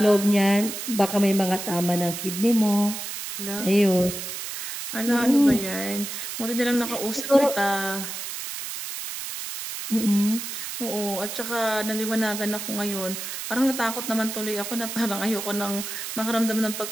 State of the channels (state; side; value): noise; right; hiss, 7 dB below the sound